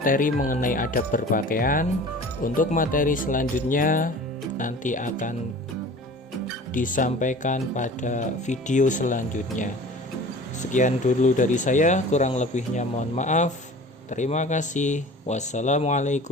mengenai adab berpakaian. Untuk materi selanjutnya nanti akan disampaikan pada video selanjutnya. Sekian dulu dari saya, kurang lebihnya mohon maaf. Terima kasih.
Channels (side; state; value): both; normal; correlation 0.41